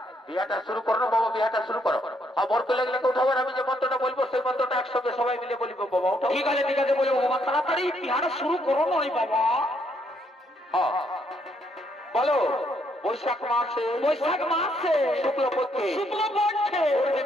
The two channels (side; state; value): both; normal; correlation 0.72